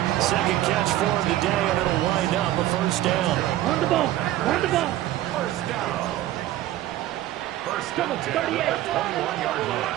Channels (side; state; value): left; quieter; 14.2 dB